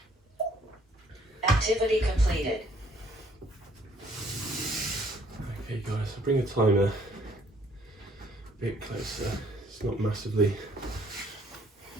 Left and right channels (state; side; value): normal; both; correlation 0.62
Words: Activity completed. Okay guys, I'll bring the timer a bit closer. It's not massively